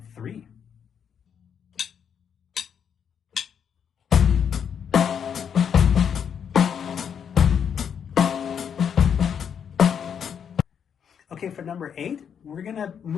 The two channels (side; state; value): right; quieter; 7.8 dB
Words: 3. Okay, Okay, for number 8, we're gonna